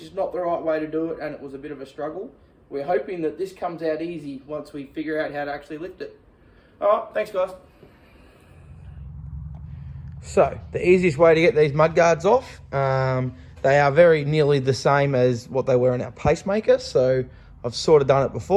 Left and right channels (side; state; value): both; identical; correlation 1.00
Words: is not the right way to do it, and it was a bit of a struggle. We're hoping that this comes out easy once we figure out how to actually lift it. Alright, thanks guys. So, the easiest way to get these mudguards off, they are very nearly the same as what they were in our pacemaker, so I've sort of done it